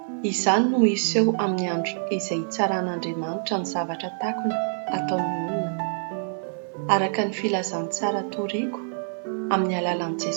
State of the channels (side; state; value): left; silent; 59 dB below the other